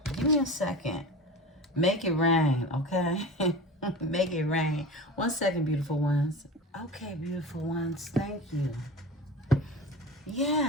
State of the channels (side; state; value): both; normal; correlation 0.32